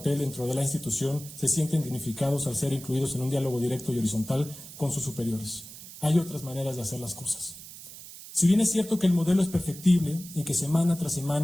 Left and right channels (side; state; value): right; noise; hiss, 15 dB below the sound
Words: dentro de la institución, se sienten dignificados al ser incluidos en un diálogo directo y horizontal con sus superiores. Hay otras maneras de hacer las cosas. Si bien es cierto que el modelo es perfectible y que semana tras